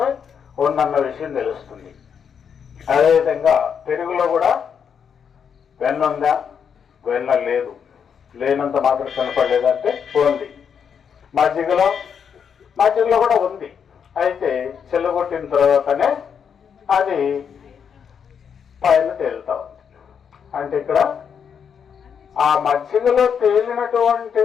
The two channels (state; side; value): quieter; right; 7.3 dB